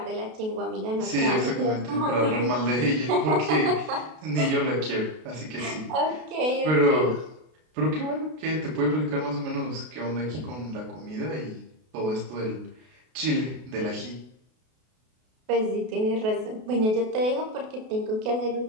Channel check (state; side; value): late; left; 32 ms